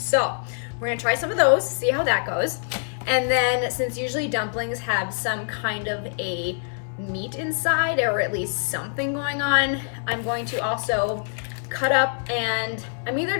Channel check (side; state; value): right; silent; 62 dB below the other